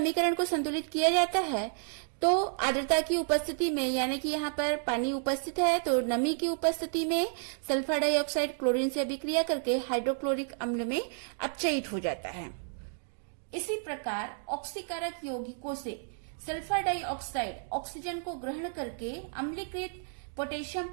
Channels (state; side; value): silent; left; 57 dB below the other